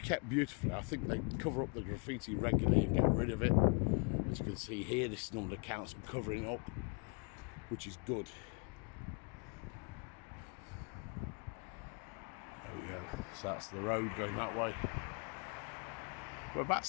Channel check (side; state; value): right; quieter; 35.4 dB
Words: beautifully. I think they cover up the graffiti regularly and get rid of it. As you can see here, this is normally the council covering it up, which is good. There we go. So that's the road going that way. We're about